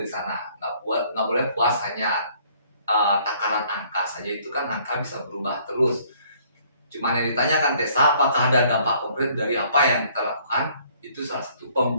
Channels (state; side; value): inverted; both; correlation -0.61